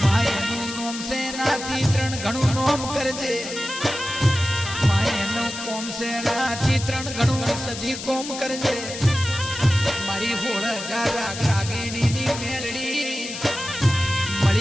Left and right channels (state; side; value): noise; left; hiss, 9 dB below the sound